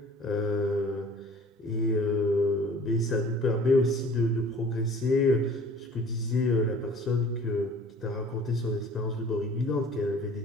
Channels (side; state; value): both; normal; correlation 0.49